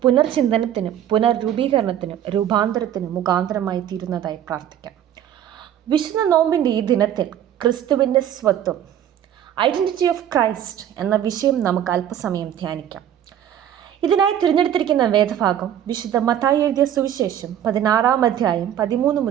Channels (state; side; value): quieter; left; 10.4 dB